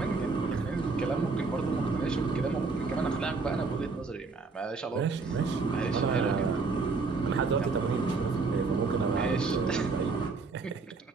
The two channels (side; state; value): left; quieter; 4.2 dB